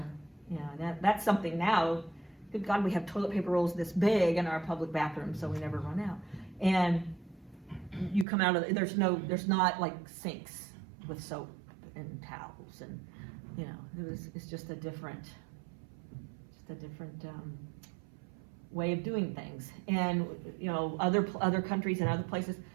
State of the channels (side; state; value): left; drops out; at 8.2 s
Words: you know, that's something now. Good God, we have toilet paper rolls this big in our public bathrooms, so we never run out. And you come out of there's not like sinks with soap and towels, and you know, it's just a different way of doing things. And you know, other countries and other places,